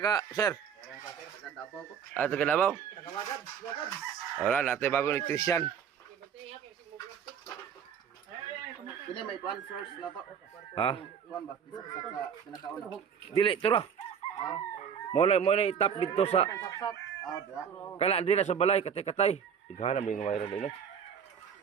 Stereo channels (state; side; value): quieter; left; 7.6 dB